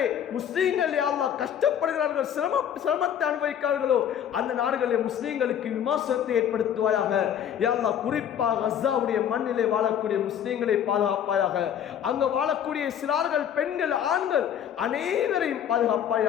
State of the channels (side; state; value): right; quieter; 9.3 dB